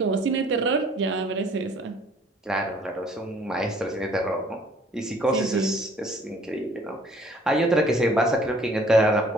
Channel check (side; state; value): both; normal; correlation 0.57